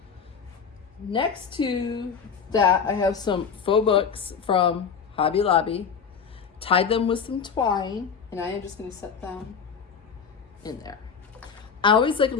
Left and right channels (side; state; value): right; quieter; 6.4 dB